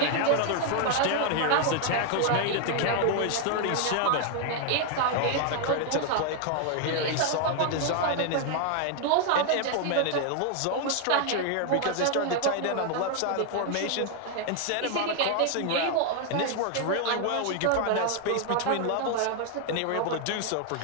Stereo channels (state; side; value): different; both; correlation 0.00